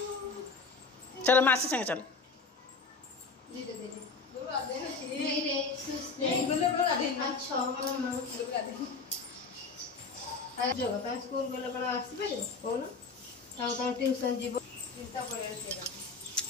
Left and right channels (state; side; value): quieter; right; 4.4 dB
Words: चलो मासी संगे चल स्कूल गला कौन ट्यूशन जीव